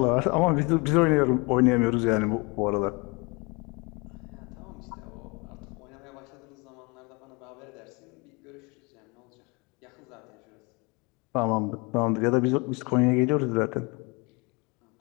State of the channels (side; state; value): right; quieter; 28.4 dB